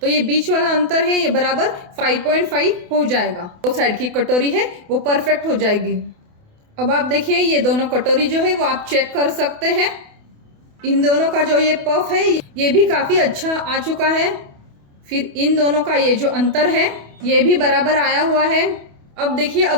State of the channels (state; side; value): late; left; 28 ms